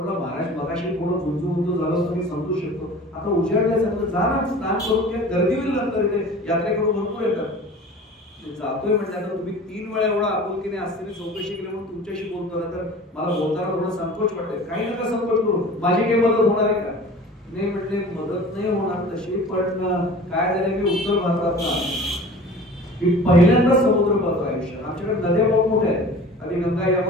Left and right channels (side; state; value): both; normal; correlation 0.41